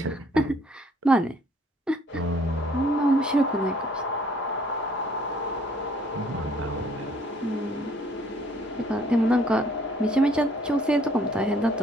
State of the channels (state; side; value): normal; both; correlation 0.61